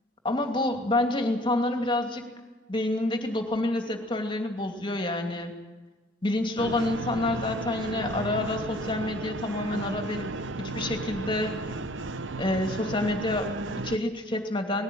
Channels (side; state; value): both; normal; correlation 0.54